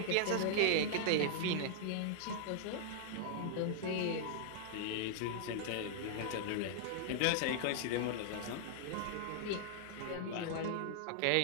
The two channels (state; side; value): different; both; correlation -0.01